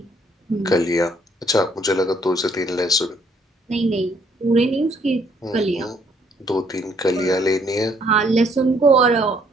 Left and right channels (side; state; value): both; normal; correlation 0.66